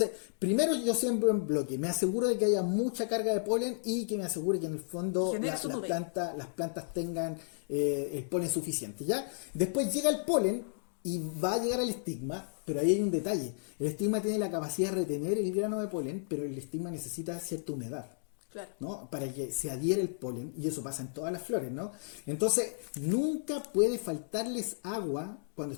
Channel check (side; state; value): right; silent; digital silence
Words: primero yo siembro en bloque, me aseguro de que haya mucha carga de polen y que me asegure que en el fondo las plantas tengan el polen suficiente, ¿ya? Después llega el polen y va a llegar al estigma, pero ahí hay un detalle. El estigma tiene la capacidad de retener el grano de polen, pero el estigma necesita cierta humedad. Claro. ¿No? Para que se adhiera el polen, y eso pasa en todas las flores, ¿no? Entonces, nunca puede faltarles agua cuando